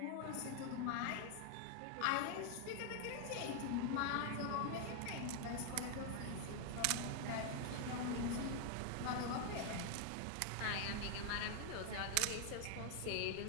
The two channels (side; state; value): both; different; correlation 0.00